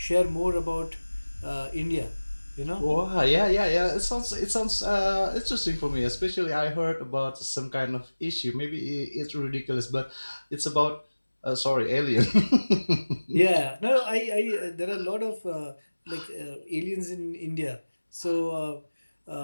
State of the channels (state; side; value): inverted; both; correlation -1.00